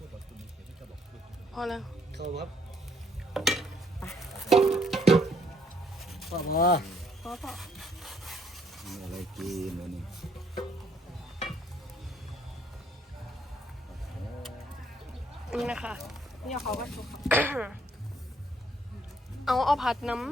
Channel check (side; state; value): both; normal; correlation 0.68